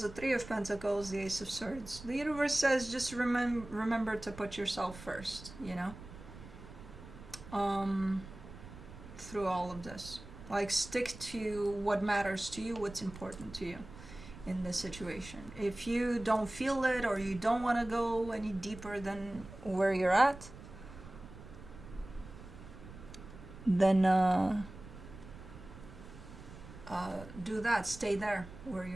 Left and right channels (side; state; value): right; noise; rumble, 15 dB below the sound